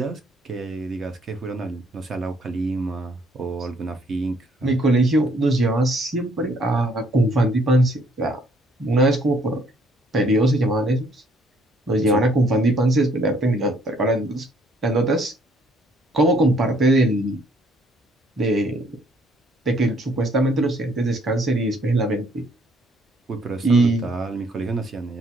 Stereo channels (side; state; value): both; normal; correlation 0.65